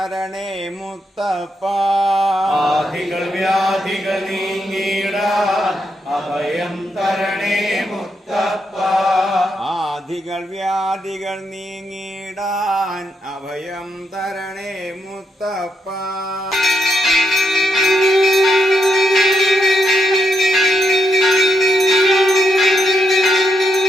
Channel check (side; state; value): both; normal; correlation 0.81